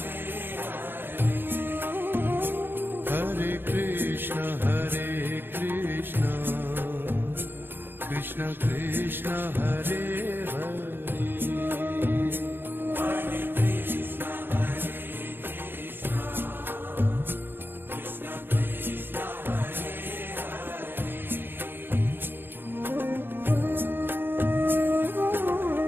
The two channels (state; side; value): late; left; 0.10 ms